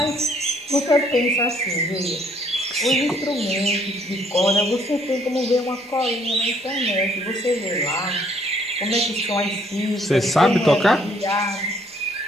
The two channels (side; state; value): both; normal; correlation 0.65